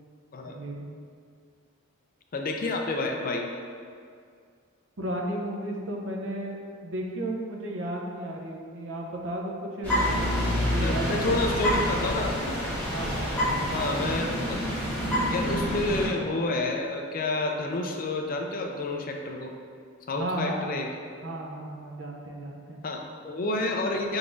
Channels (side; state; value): both; normal; correlation 0.27